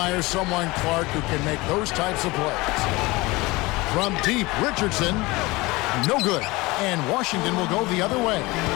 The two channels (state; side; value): quieter; right; 22.3 dB